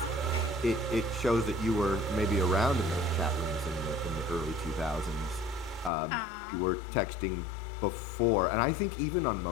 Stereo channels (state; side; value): drops out; right; at 5.9 s